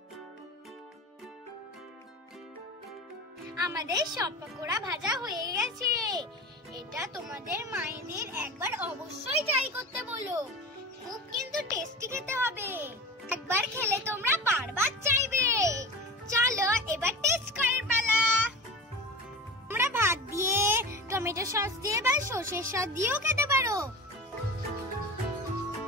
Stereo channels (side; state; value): both; normal; correlation 0.31